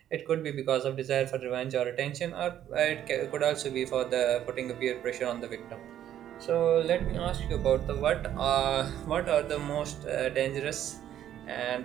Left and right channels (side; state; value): left; quieter; 11.1 dB